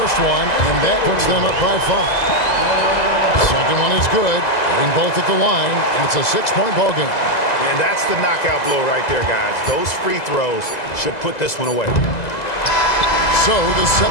one, and that puts them up by 5. Second one is good. Hitting both at the line, and it's a 6-point ball game. And that's the knockout blow right there, guys. Those free throws should put this one away. So the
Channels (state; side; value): late; right; 2.0 ms